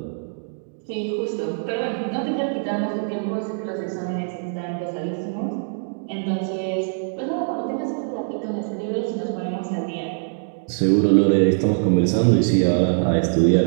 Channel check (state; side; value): silent; left; digital silence